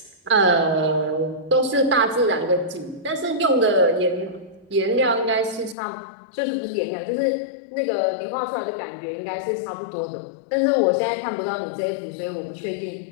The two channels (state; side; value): drops out; right; at 5.8 s